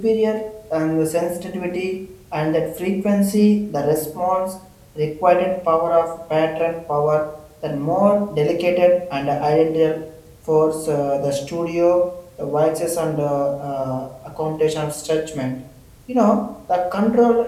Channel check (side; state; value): both; identical; correlation 1.00